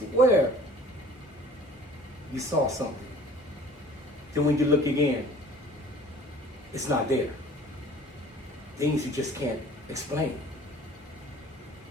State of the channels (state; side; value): normal; both; correlation 0.48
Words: you saw something. Then when you look again, it's not there. Things you just can't explain.